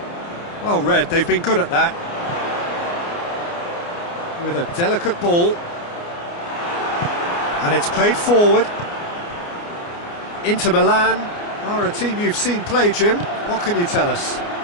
Well read, they've been good at that. With a delicate ball. And it's played forward. Inter Milan are a team you've seen play, Jim. What can you tell us?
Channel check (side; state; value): right; late; 29 ms